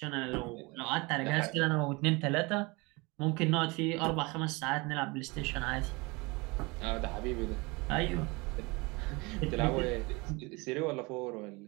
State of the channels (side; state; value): left; quieter; 25.9 dB